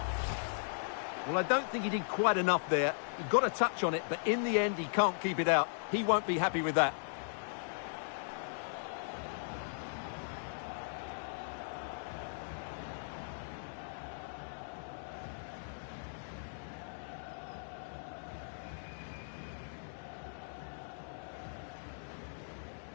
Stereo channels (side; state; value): right; silent; digital silence